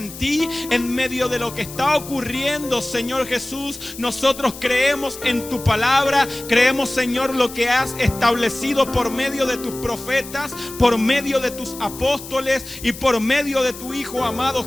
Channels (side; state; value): left; noise; hiss, 14 dB below the sound